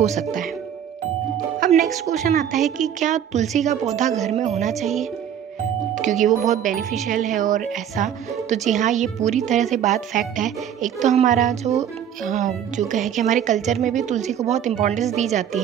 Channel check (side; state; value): left; quieter; 9.4 dB